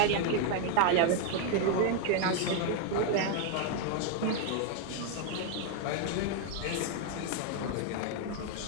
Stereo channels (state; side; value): different; both; correlation 0.00